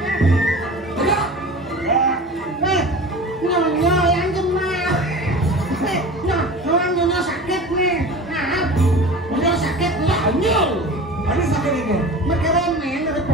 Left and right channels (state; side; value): normal; both; correlation 0.36